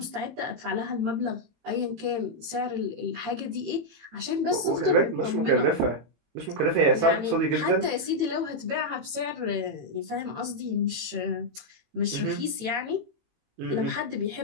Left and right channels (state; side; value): late; left; 18 ms